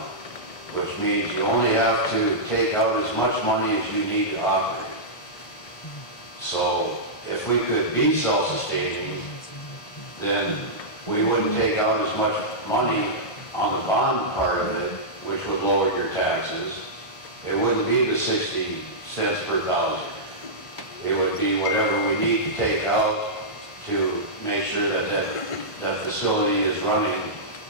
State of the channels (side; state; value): right; late; 1.5 ms